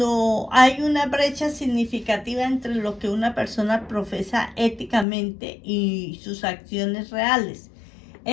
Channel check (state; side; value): drops out; right; at 5.1 s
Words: hay una brecha significativa entre lo que una persona profesa éticamente y sus acciones reales.